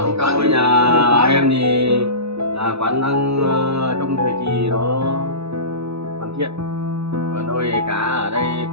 Câu nhà em thì là quán đang trong thời kỳ nó hoàn thiện. Còn đôi cá ở đây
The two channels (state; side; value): late; left; 0.79 ms